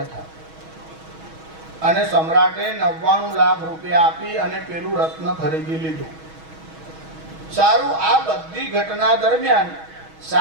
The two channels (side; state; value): left; late; 6.3 ms